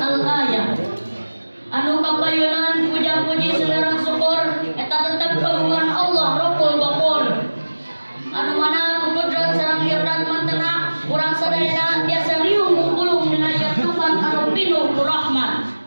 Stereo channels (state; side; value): inverted; both; correlation -1.00